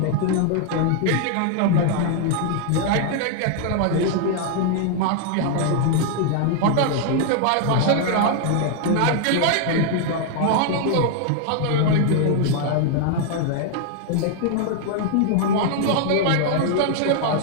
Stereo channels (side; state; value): both; different; correlation 0.00